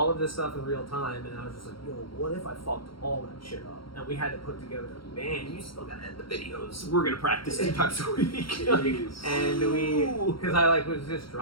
of this stuff in real time, and I was just like, yo, what if I fucked all that shit up? And we had to put together a band. You still gotta edit the videos. We're gonna practice 2 times a week. And we, because I like was just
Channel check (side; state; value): right; late; 0.74 ms